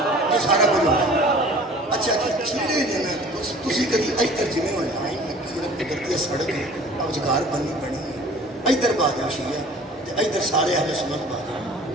سارا کچھ ہوتا ہے. اچھا چیڑے نے نا تسی کدی ادھر جویں ہونا کرتی سڑک روزگار بننی پڑنی ہے ادھر بادل شیعہ ادھر سارے اہل سنت بادل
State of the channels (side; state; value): both; normal; correlation 0.47